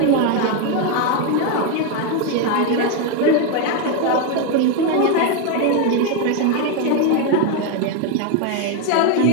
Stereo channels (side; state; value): both; different; correlation 0.02